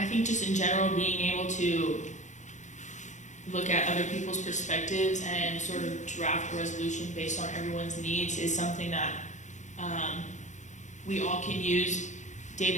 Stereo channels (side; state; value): right; late; 0.35 ms